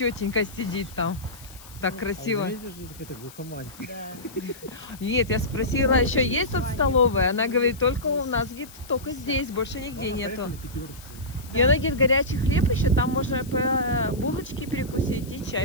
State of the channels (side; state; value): left; noise; hiss, 19 dB below the sound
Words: сидит там? Так красиво. Какая-то глухомань. Нет, я спросила, еще есть тут столовая? Она говорит, только у нас, говорит, только здесь, больше нигде нету. И она говорит, горячий хлеб еще, там можно по булочке перекусить и